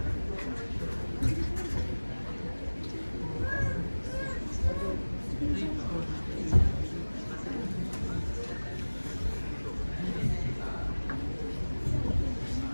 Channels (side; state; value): both; inverted; correlation -1.00